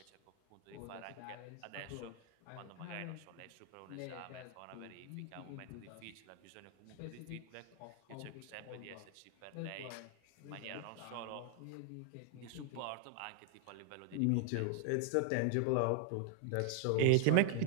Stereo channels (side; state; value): both; different; correlation 0.01